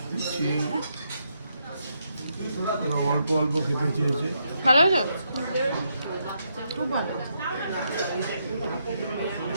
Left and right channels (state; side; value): inverted; both; correlation -0.79